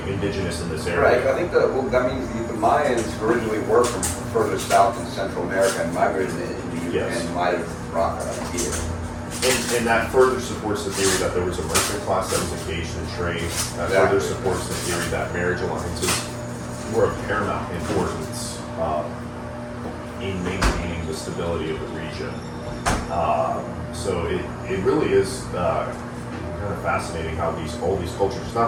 indigenous in this area. Right. I think that means the Mayans originally were from further south in Central America and migrated into and might have brought that up here. And that further supports the theory that there was a merchant class that was engaged in trade. That further supports the theory that marriage alliances were of paramount importance in maintaining the stability of the region. So it really is kind of fascinating how all these cultures, it's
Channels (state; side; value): identical; both; correlation 1.00